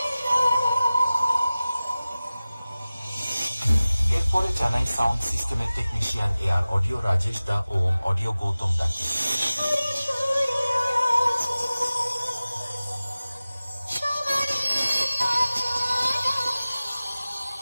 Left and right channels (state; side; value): inverted; both; correlation -0.97